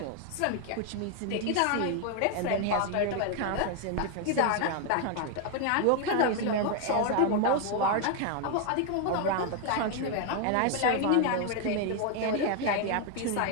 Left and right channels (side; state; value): both; different; correlation 0.00